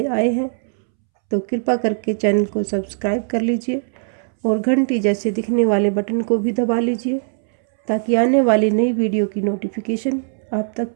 आए हैं तो कृपा करके चैनल को सब्सक्राइब कर लीजिए और घंटी जैसे दिखने वाले बटन को भी दबा लीजिए ताकि आने वाली नई वीडियो की नोटिफिकेशन आप तक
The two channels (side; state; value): left; silent; 66 dB below the other